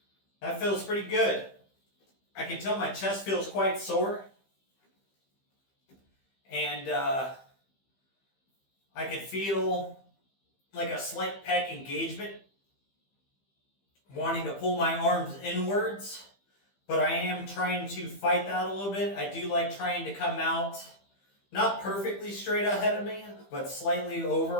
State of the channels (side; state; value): right; late; 15 ms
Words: That feels pretty good. I can tell my chest feels quite sore. And I can feel like a slight pec engagement, wanting to pull my arms inwards. But I am trying to fight that a little bit. I do like trying to come out, not perfectly straight ahead of me, but slightly